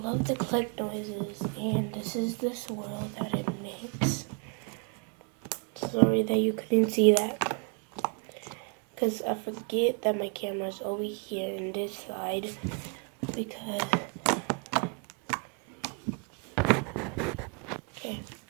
the click noises, and this is the swirl that it makes. Sorry that you couldn't see that, because I forget that my camera's over here in this side, because okay,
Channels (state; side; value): quieter; left; 37.2 dB